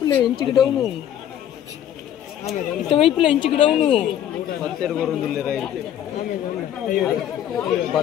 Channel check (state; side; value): quieter; right; 10.6 dB